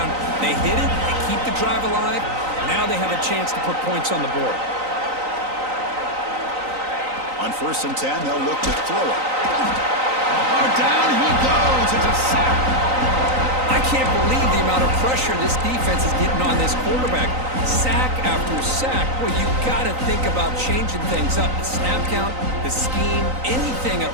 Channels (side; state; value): left; late; 3.9 ms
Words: They hit it, they keep the drive alive, now they have a chance to put points on the board. On 1st and 10, they'll look to throw it. Oh, down he goes. It's a sack. I can't believe the amount of pressure this defense is getting on this quarterback. Sack after sack. Well, you got to think about changing things up. The snap count, the scheme, anything at